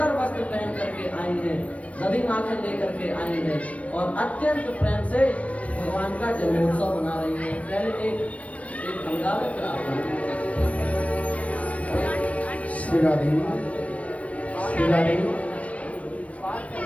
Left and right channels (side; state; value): right; late; 0.065 ms